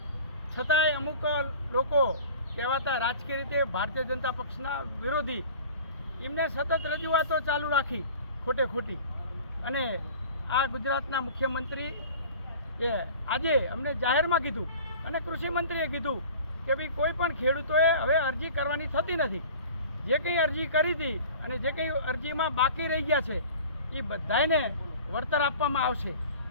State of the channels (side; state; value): both; inverted; correlation -0.42